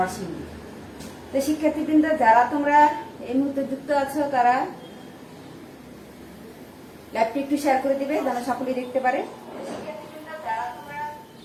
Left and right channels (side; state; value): both; identical; correlation 1.00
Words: তো শিক্ষার্থীবৃন্দ, যারা তোমরা এই মুহূর্তে যুক্ত আছো, তারা ল্যাবটি একটু শেয়ার করে দিবে যেন সকলেই দেখতে পারে।